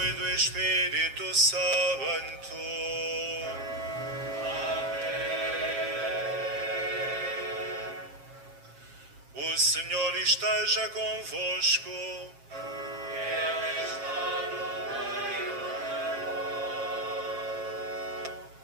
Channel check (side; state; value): left; late; 7.4 ms